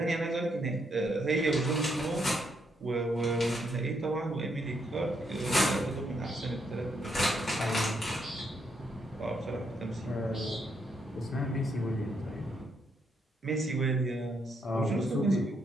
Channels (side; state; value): both; normal; correlation 0.76